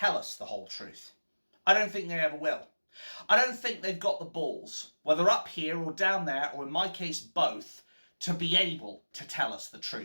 us the whole truth. I don't think they ever will. I don't think they've got the balls, whether up here or down there, or in my case both, to be able to tell us the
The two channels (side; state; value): both; inverted; correlation -1.00